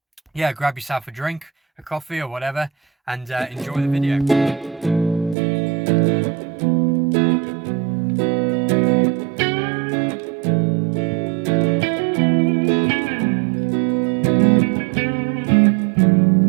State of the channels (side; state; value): left; drops out; at 5.4 s